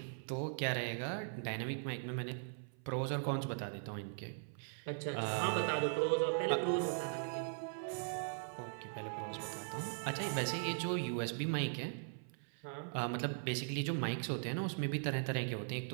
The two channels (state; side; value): silent; left; 51 dB below the other